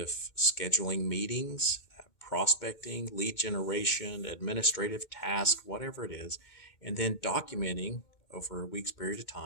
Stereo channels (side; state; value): right; late; 2.2 ms